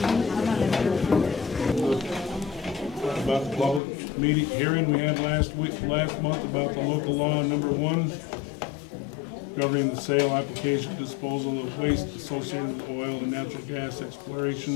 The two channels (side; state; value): right; drops out; at 3.8 s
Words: About the public meeting hearing we had last month about the local law number 1 governing the sale, application, disposal of waste associated with oil and natural gas